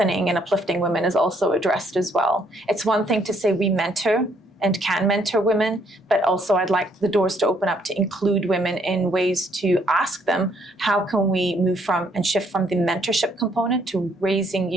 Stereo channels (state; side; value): normal; both; correlation 0.68